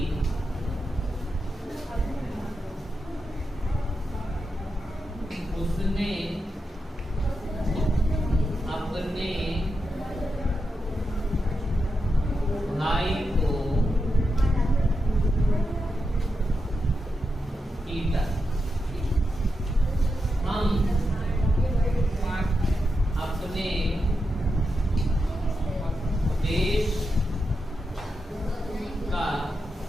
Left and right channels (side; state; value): both; normal; correlation 0.87